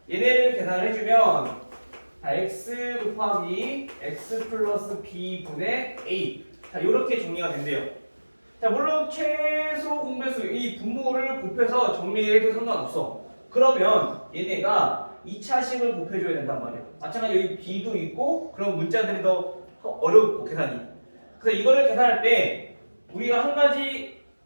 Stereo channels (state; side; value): inverted; both; correlation -1.00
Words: 얘네를 계산해주면 자, x 곱하기 x 플러스 b분의 a 자, 이렇게 정리가 된대요. 자, 물론 최소 공배수 이 분모를 곱해서 정리해도 상관없어. 그러면 얘네가 2차식을 곱해줘야 된단 말이야. 마찬가지로 여기 b도 있고 그런 문자들이 더 어렵고 계산이. 그래서 이거를 계산할 때 우리가 한 가지